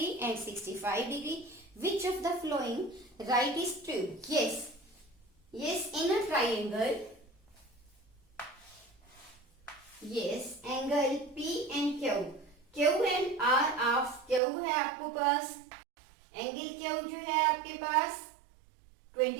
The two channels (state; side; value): drops out; left; at 14.4 s